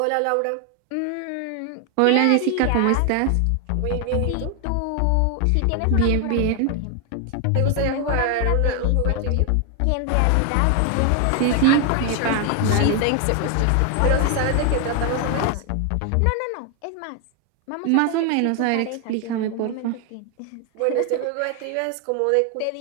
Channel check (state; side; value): different; both; correlation 0.00